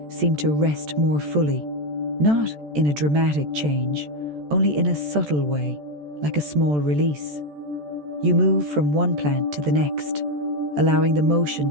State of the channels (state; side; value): late; left; 14 ms